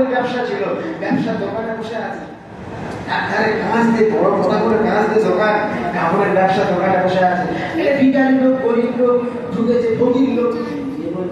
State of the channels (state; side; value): identical; both; correlation 1.00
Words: ব্যবসা ছিল, ব্যবসা দোকানে বসে আছে, একধারে কাঁচ দিয়ে বড় কথা করে কাঁচ দিয়ে দোকান, কাপড়ের ব্যবসা দোকানে বসে আছে। এটা ভিখারি লোক, গরিব লোক ঢুকেছে, ফকির লোক। এ